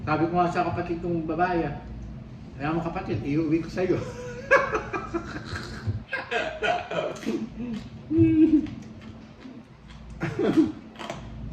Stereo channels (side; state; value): both; identical; correlation 1.00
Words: Sabi ko nga sa kapatid kong babae, kaya mo kapatid, iuwi ko sa'yo.